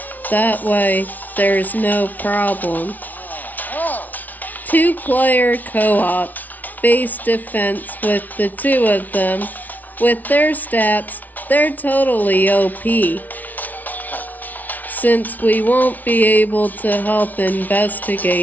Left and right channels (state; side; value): late; right; 0.078 ms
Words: That way, there's no problem. 2-player co-op, base defense with the two of them. With their stats, they're totally OP. Since we won't be able to help